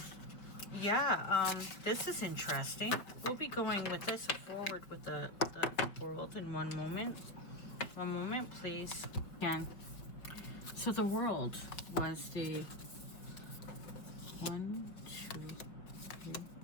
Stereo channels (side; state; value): right; late; 5.1 ms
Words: yeah, this is interesting. We'll be going with this forward with the world in one moment. One moment, please. Again. So the world was the 1, 2, 3,